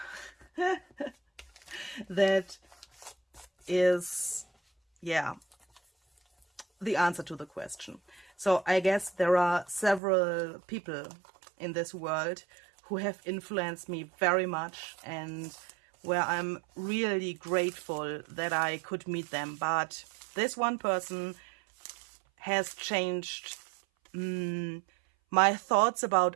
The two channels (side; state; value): left; drops out; at 10.0 s